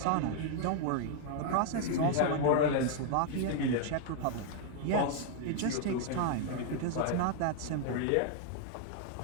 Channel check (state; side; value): different; both; correlation 0.00